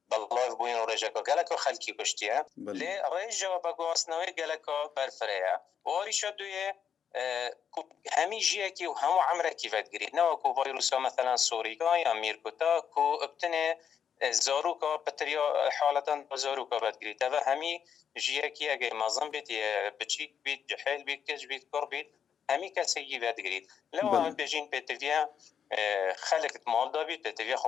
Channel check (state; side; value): quieter; right; 7.8 dB